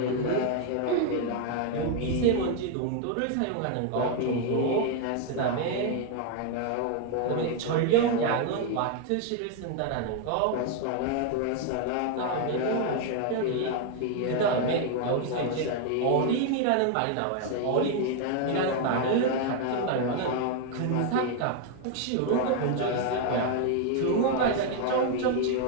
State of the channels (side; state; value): both; different; correlation 0.00